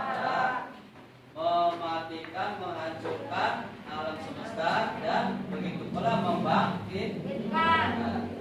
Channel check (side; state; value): both; identical; correlation 1.00